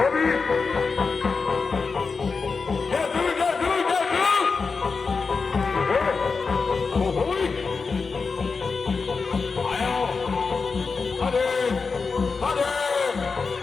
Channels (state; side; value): quieter; right; 4.7 dB